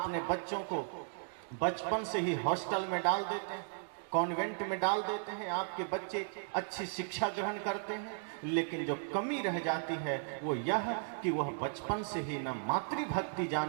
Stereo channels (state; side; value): silent; left; digital silence